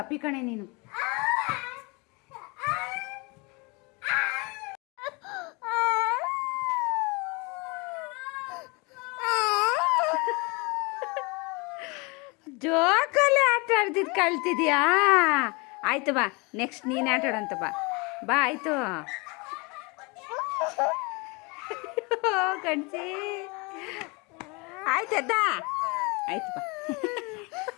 ಕಣೆ ನೀನು. ಜೋಕಲ್ಲಿ ಆಟ ಆಡ್ತಿದ್ ಕಳ್ತಿದ್ಯಾ? ಆಯ್ತು ಬಾ, ನೆಕ್ಸ್ಟ್ ನೀನು ಆಟ ಆಡಂತ ಬಾ. ಬಾ ಆಯ್ತು. ಕಣ್ಸಿ ಆಯ್ತದ, ಆಯ್ತು ಬಾ.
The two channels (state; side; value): quieter; right; 28.5 dB